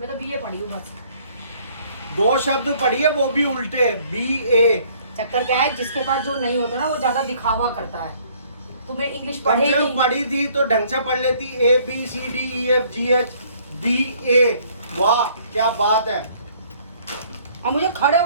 तो बीए पढ़ी हूँ बस। 2 शब्द पढ़ी है वो भी उल्टे, BA। चक्कर क्या है, जिसके पास जो नहीं होता ना वो ज्यादा दिखावा करता है। तुम्हें इंग्लिश कम पढ़े से कम नहीं। पढ़ी थी तो ढंग से पढ़ लेती। ABCDEFGH BA, वाह क्या बात है। और मुझे खड़े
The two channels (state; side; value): inverted; both; correlation -0.60